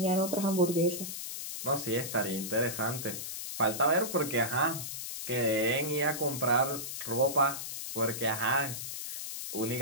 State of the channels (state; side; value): noise; left; hiss, 6 dB below the sound